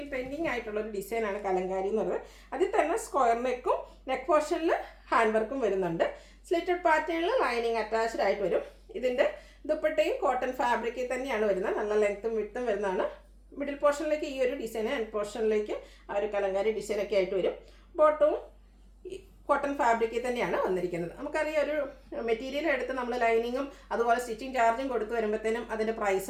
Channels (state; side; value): identical; both; correlation 1.00